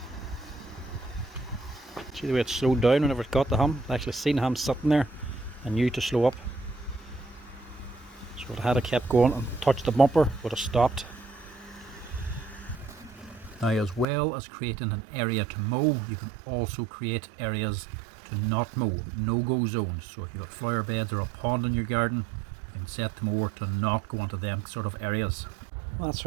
See the way it slowed down whenever it got the hum? I actually seen him sitting there and knew to slow up. So it had to kept going and touched the bumper, would have stopped. Now, as well as creating an area to mow, you can also create areas to not mow, no-go zones. So if you've got flower beds or a pond in your garden, you can set the mower to not go into them sort of areas. That's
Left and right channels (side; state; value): left; drops out; at 14.1 s